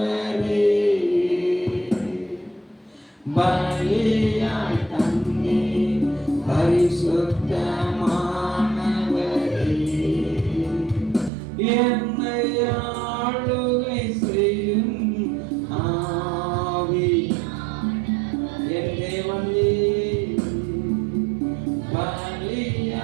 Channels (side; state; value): left; drops out; at 11.3 s